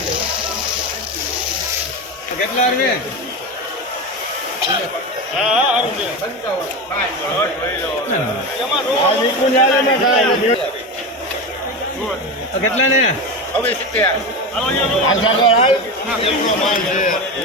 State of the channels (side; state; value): both; normal; correlation 0.21